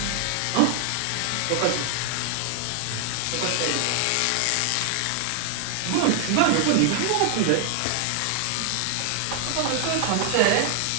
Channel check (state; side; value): different; both; correlation 0.00